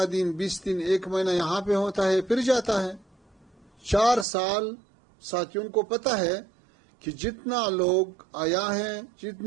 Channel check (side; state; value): left; drops out; at 4.2 s